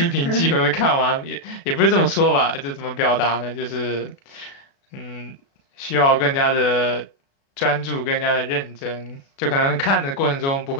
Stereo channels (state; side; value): late; right; 36 ms